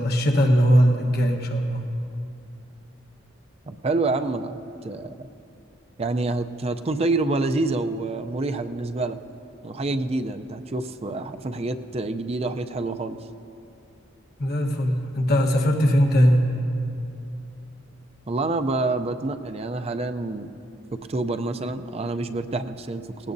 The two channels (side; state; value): both; normal; correlation 0.76